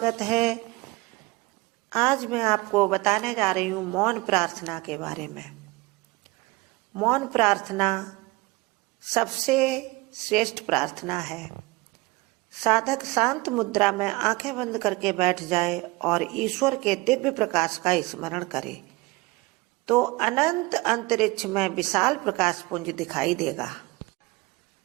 है। आज मैं आपको बताने जा रही हूँ मौन प्रार्थना के बारे में। मौन प्रार्थना सबसे श्रेष्ठ प्रार्थना है। साधक शांत मुद्रा में आंखें बंद करके बैठ जाए और ईश्वर के दिव्य प्रकाश का स्मरण करे तो अनंत अंतरिक्ष में विशाल प्रकाश पुंज दिखाई देगा।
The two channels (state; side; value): quieter; left; 23.0 dB